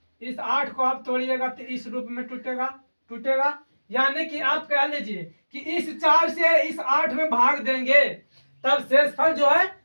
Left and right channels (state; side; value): inverted; both; correlation -1.00